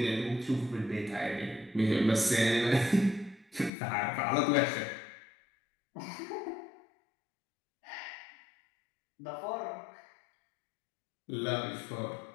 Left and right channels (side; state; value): right; drops out; at 3.7 s